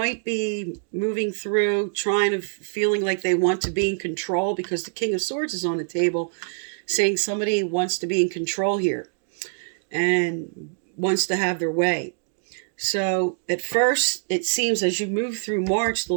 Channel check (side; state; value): left; silent; digital silence